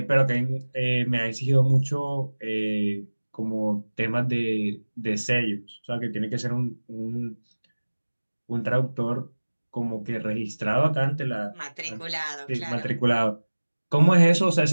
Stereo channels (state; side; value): inverted; both; correlation -1.00